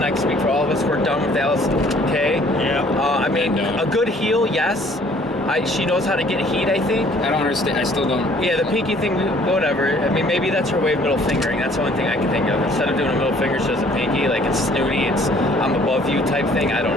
I can speak for all of us. We're done with Allison Kay. Yeah. I mean, And, a good heel, yes. She knows how to get heat, I think. I don't understand. I still don't. Yeah, the pinky thing, whatever. I mean, maybe that's her way of middle fingering. That's the only thing I can think of. Instead of doing a middle finger, she does a pinky. Like, it's snooty, it's I'm above you type thing. I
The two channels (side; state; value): both; normal; correlation 0.57